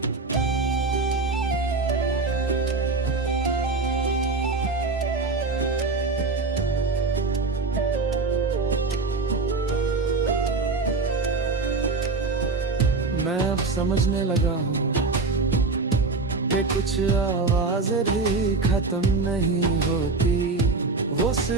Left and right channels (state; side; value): quieter; left; 3.8 dB